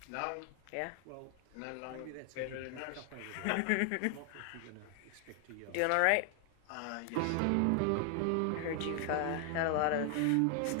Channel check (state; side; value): different; both; correlation 0.00